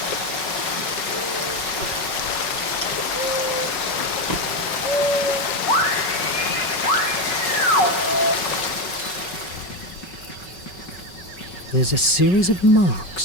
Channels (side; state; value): right; late; 5.4 ms